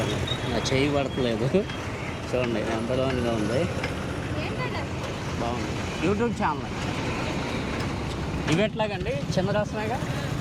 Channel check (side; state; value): both; identical; correlation 1.00